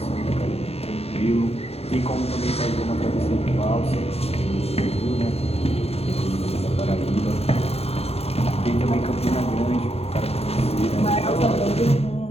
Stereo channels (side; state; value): right; late; 0.29 ms